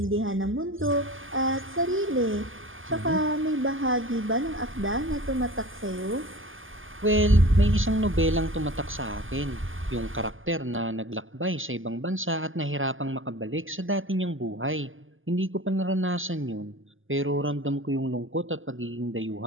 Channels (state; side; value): late; left; 0.58 ms